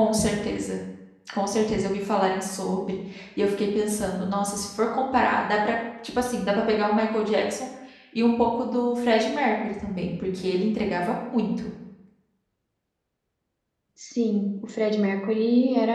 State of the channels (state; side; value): identical; both; correlation 1.00